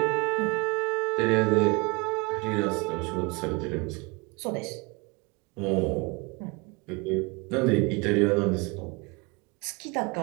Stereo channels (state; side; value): quieter; left; 27.0 dB